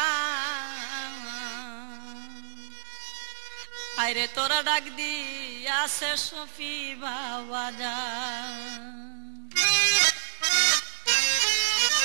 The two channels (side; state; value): left; silent; digital silence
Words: আরে তোরা ডাক দি আসে সফি বাবা যা